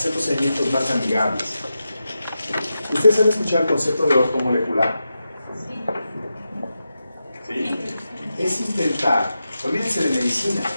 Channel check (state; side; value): inverted; both; correlation -0.89